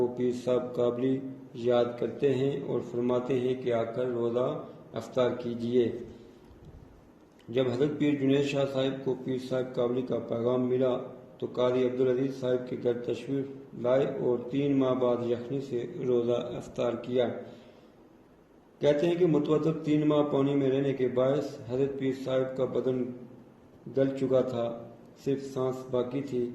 پیر صاحب کابلی یاد کرتے ہیں اور فرماتے ہیں کہ آ کر روزہ افطار کیجیے۔ جب حضرت پیر جنید شاہ صاحب کو پیر صاحب کابلی کا پیغام ملا تو قاضی عبدالعزیز صاحب کے گھر تشریف لائے اور 3 ماہ بعد یخنی سے روزہ افطار کیا۔ کہتے ہیں کہ متواتر 3 ماہ پانی میں رہنے کے باعث حضرت پیر صاحب کا بدن گل چکا تھا، صرف سانس باقی تھی۔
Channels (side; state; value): both; identical; correlation 1.00